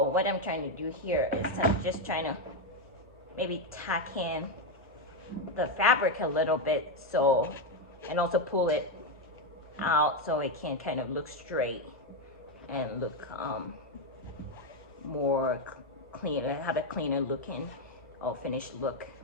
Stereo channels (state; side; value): normal; both; correlation 0.06